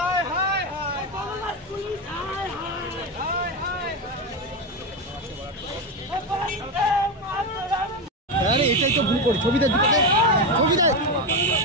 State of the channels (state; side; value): normal; both; correlation 0.12